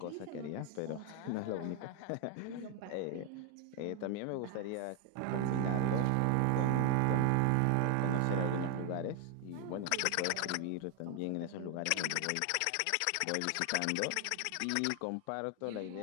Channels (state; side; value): different; both; correlation 0.00